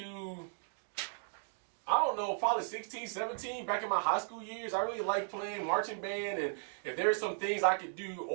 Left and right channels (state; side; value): silent; left; digital silence